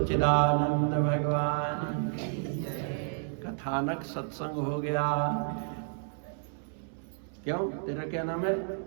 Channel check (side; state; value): left; silent; 57 dB below the other